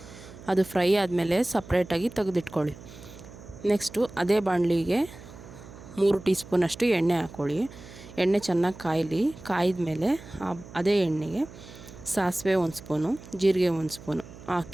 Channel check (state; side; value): noise; right; hum, 17 dB below the sound